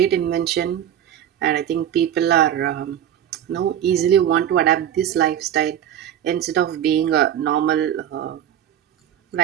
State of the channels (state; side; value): quieter; left; 10.3 dB